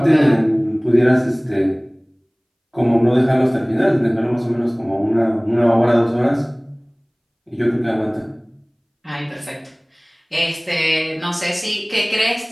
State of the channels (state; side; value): identical; both; correlation 1.00